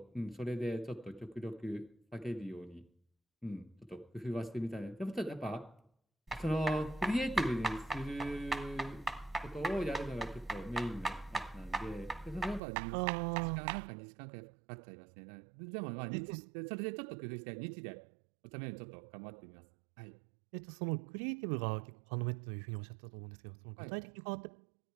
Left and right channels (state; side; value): drops out; left; at 12.6 s